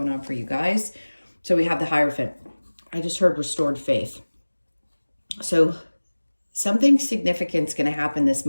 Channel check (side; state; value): both; inverted; correlation -1.00